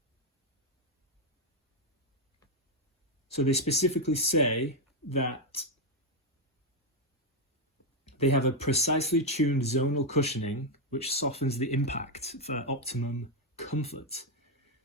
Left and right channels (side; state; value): both; normal; correlation 0.03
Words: So they specifically say that they have a precisely tuned zonal cushioning which softens the impact for optimum comfort.